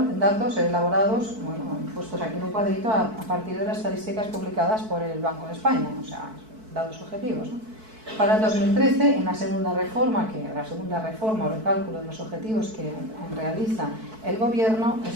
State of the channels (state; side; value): late; left; 4.6 ms